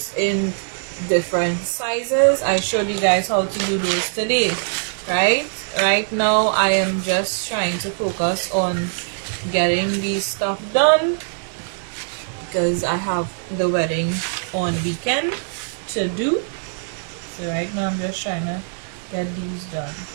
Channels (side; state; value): left; silent; digital silence